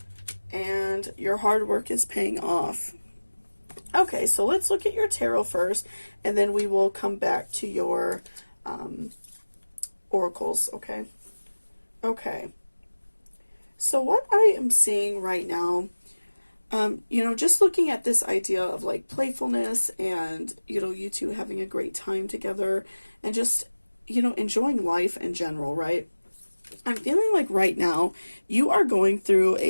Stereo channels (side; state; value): both; inverted; correlation -1.00